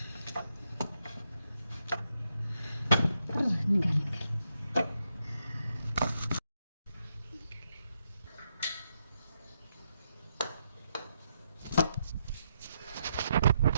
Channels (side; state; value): both; inverted; correlation -0.81